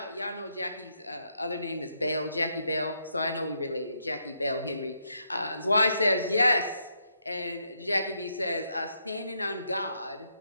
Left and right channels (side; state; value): both; inverted; correlation -0.78